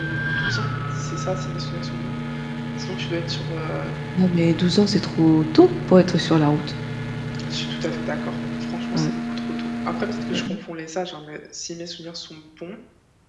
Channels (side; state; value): both; identical; correlation 1.00